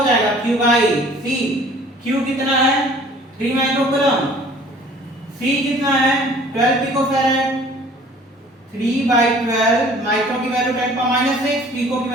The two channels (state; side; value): normal; both; correlation 0.51